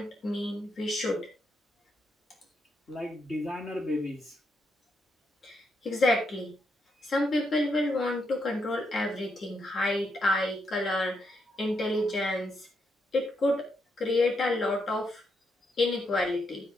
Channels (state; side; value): normal; both; correlation 0.80